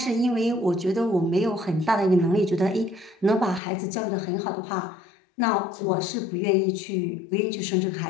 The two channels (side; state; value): right; drops out; at 3.6 s